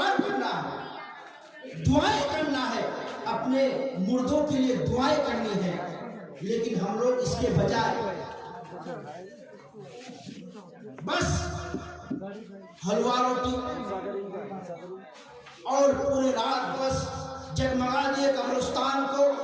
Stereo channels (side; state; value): both; identical; correlation 1.00